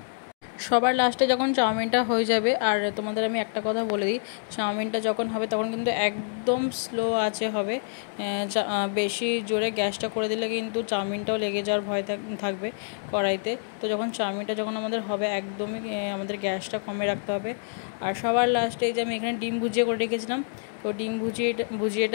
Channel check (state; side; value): silent; right; digital silence